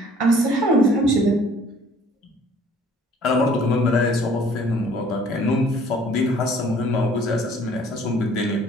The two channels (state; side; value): normal; both; correlation 0.55